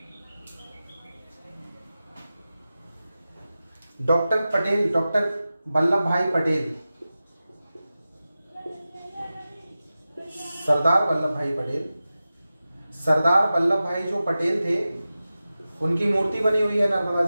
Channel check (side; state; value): both; inverted; correlation -0.94